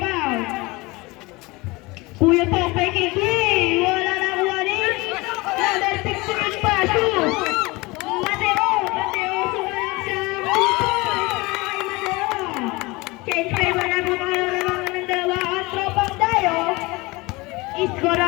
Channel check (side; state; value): right; quieter; 23.4 dB